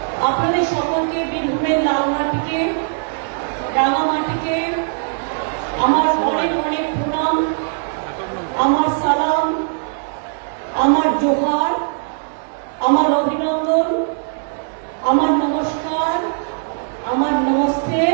আপনাদের সকলকে বীরভূমের লালমাটিকে, রাঙামাটিকে আমার অনেক অনেক প্রণাম, আমার সালাম, আমার জোহার, আমার অভিনন্দন, আমার নমস্কার, আমার নমস্তে,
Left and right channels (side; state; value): left; silent; 63 dB below the other